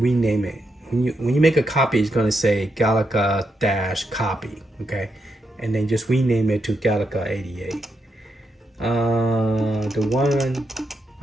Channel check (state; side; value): normal; both; correlation 0.83